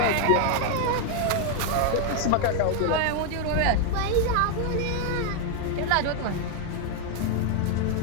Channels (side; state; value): both; different; correlation 0.01